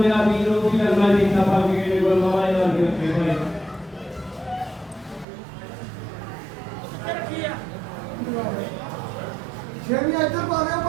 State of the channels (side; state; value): left; drops out; at 5.2 s